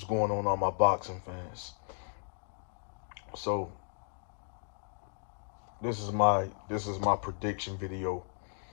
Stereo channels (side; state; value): right; silent; 55 dB below the other